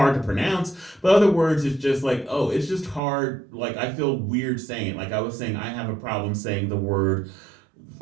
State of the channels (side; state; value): left; drops out; at 3.0 s